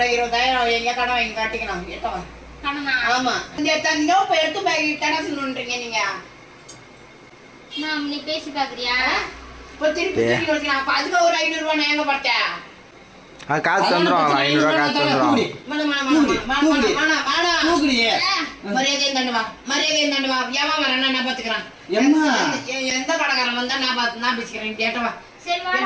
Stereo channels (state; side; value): identical; both; correlation 1.00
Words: 20,000 எங்க கடன் வாங்கி காட்டிக்கணும். எட்டவா கடனா? ஆமா. இந்த தந்தோ இப்ப எடுத்து போய் கடன் சொல்லுன்றீங்க நீங்க. நீ பேசி பாக்குறியா? இப்ப திருப்பி திருப்பி வச்சுக்கலாம். அப்ப அதுக்கு ஒரு 500 ரூபாய் நான் எங்க பார்த்தேன்? காசு தந்துருவாங்க. 500 காசு தந்துருவாங்க. மரியாதையும் தண்டுவா. மரியாதையும் தண்டுவா. ஏமா வரேன்னா நான் பாத்துக்கிறேன். எந்த கடைக்காரன் வந்தா நான் பேசிக்கிறேன். கேட்டவா சரி